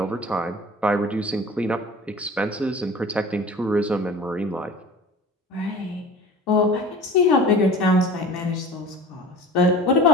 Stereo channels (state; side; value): normal; both; correlation 0.40